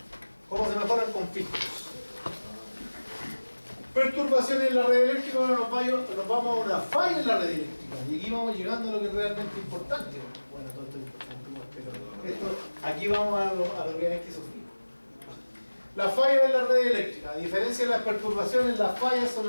¿Cómo se mejoran con filtros? Perturbaciones en la red eléctrica. Ahora nos vamos a una falla en la red eléctrica. Y aquí vamos llegando a lo que es realmente importante. Bueno, todo esto es importante, pero aquí vamos a lo que hay que sufrir. La falla en la red eléctrica. A diferencia de las perturbaciones, las fallas son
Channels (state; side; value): inverted; both; correlation -1.00